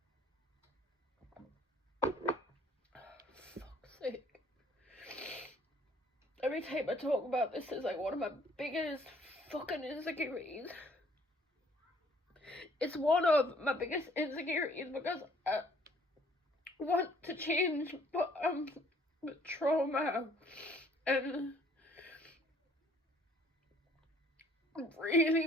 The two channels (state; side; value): normal; both; correlation 0.59